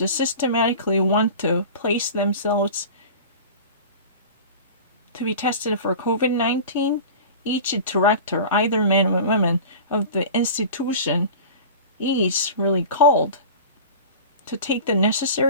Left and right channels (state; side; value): inverted; both; correlation -0.36